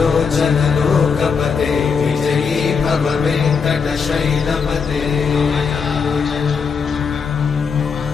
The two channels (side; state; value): right; quieter; 5.7 dB